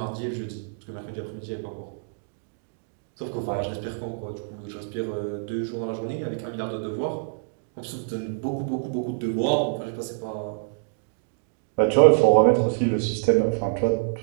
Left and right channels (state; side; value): silent; left; digital silence